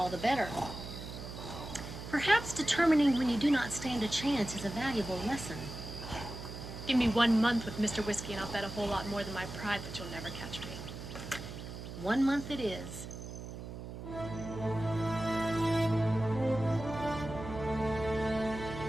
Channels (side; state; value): right; noise; hum, 10 dB below the sound